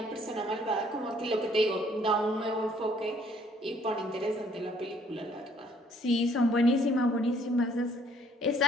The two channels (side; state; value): both; normal; correlation 0.62